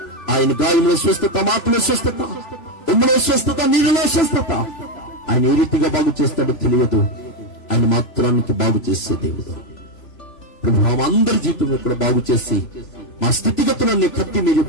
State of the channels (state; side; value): late; right; 3.0 ms